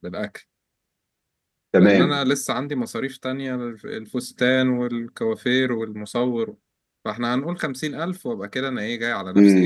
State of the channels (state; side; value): identical; both; correlation 1.00